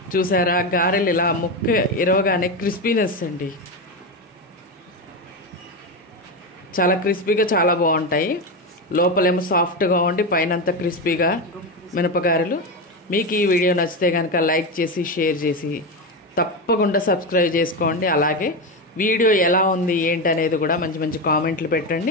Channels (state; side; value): normal; both; correlation 0.15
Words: చూసారా గారెలు ఇలా ముక్క ఇరవగానే క్రిస్పీనెస్ అండి, చాలా క్రిస్పీగా చాలా బాగుంటాయి. లోపలేమో సాఫ్ట్గా ఉండి పైన అంతా క్రిస్పీగా మినపగారెలు. మీకు ఈ వీడియో నచ్చితే కనుక లైక్ చేసి షేర్ చేసి తప్పకుండా సబ్స్క్రైబ్ చేసుకోండి. అలాగే వీడియో ఎలా ఉంది ఏంటి అనేది కూడా మంచి మంచి కామెంట్లు